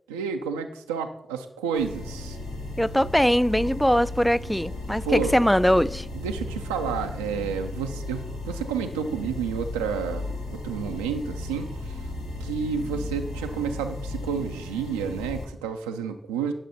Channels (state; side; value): normal; both; correlation 0.79